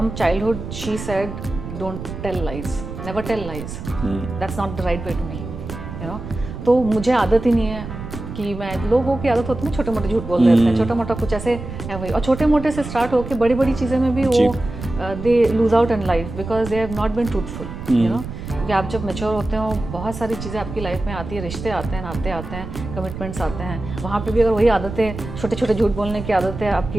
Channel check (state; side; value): noise; right; rumble, 9 dB below the sound